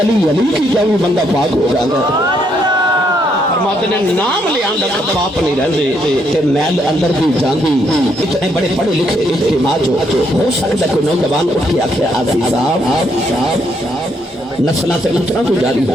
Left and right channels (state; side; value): normal; both; correlation 0.73